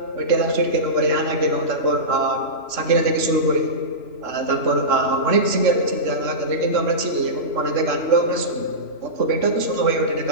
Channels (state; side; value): late; left; 3.0 ms